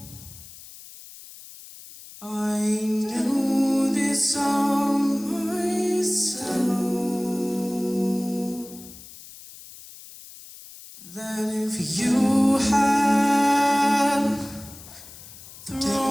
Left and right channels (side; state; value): left; noise; hiss, 18 dB below the sound